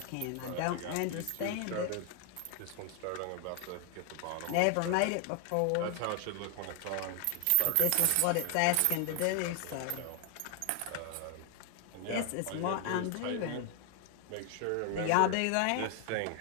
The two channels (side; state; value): both; different; correlation 0.00